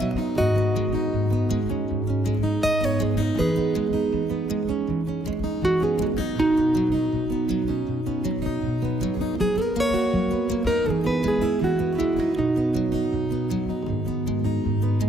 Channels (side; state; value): both; normal; correlation 0.72